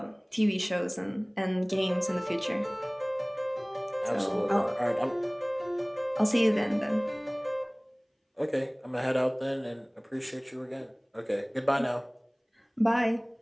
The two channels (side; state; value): both; identical; correlation 1.00